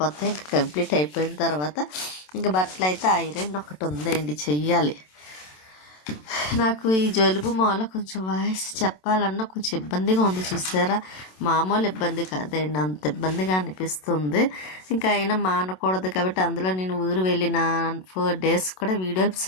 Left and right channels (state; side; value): late; right; 27 ms